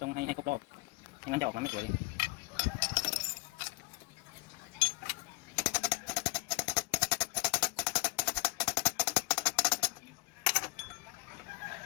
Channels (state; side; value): quieter; right; 25.8 dB